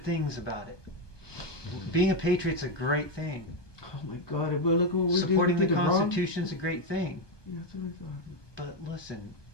things about it. Being a patriot's a great thing. Oh my God! But look what we're Supporting the doing. Constitution is a great thing. Yeah, that's what I thought. But listen,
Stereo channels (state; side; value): late; right; 1.2 ms